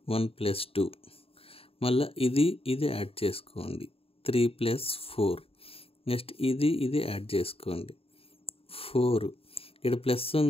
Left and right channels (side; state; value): right; late; 0.27 ms